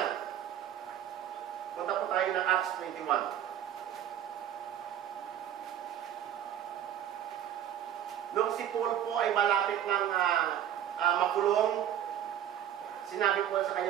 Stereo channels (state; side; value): quieter; left; 10.4 dB